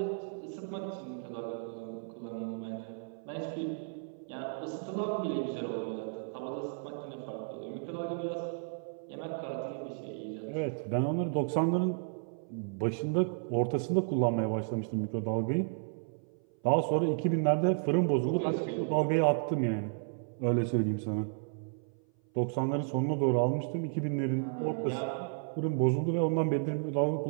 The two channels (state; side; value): silent; left; 56 dB below the other